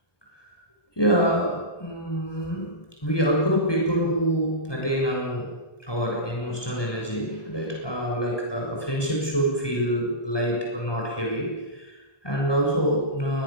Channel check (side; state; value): right; late; 1.2 ms